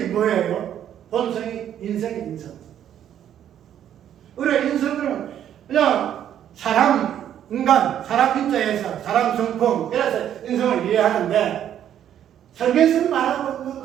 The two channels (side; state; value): left; quieter; 10.3 dB